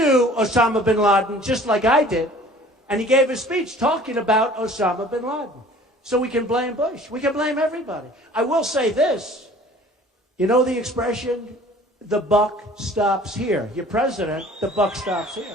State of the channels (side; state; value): both; normal; correlation 0.49